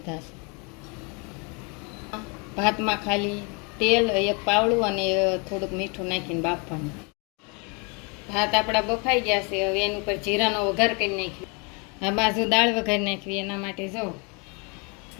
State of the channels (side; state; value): right; quieter; 32.9 dB